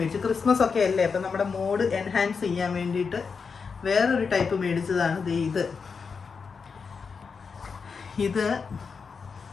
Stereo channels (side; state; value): right; quieter; 5.4 dB